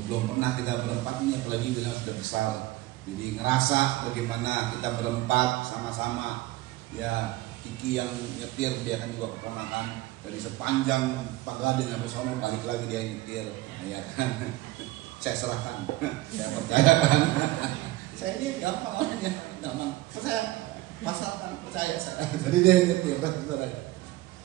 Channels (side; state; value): left; quieter; 17.6 dB